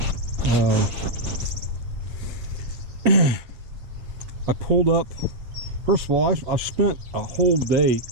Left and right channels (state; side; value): late; left; 8.2 ms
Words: I pulled up, first of all, I spent a whole day